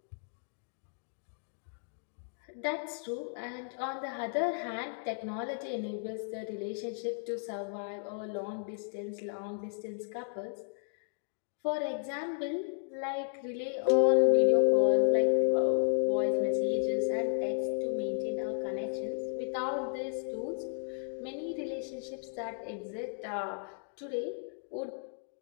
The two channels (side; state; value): right; silent; digital silence